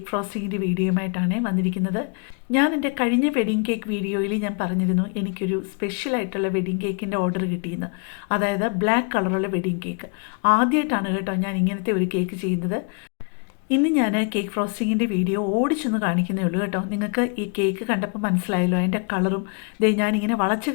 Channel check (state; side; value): quieter; right; 36.6 dB